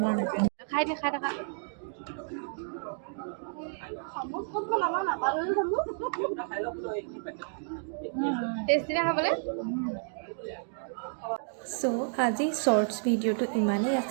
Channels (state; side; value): silent; left; digital silence